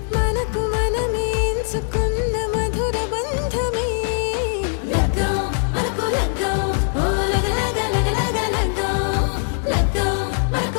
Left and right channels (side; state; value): right; silent; digital silence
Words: మనకు మనమే ఎంచుకున్న మధుర బంధమే లగ్గం మనకు లగ్గం ఓ లగలగ లగ్గం